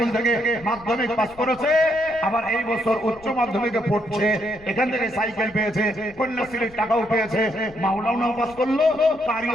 থেকে মাধ্যমিক পাস করেছে, আবার এই বছর উচ্চ মাধ্যমিকে পড়ছে, এখান থেকে সাইকেল পেয়েছে, কন্যাশ্রীর টাকাও পেয়েছে, মাওলানাও পাস করলো,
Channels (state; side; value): noise; left; rumble, 24 dB below the sound